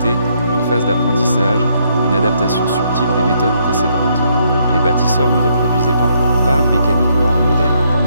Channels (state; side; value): inverted; both; correlation -0.72